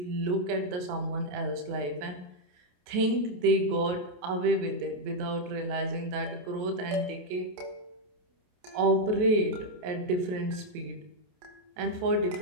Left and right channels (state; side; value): late; left; 28 ms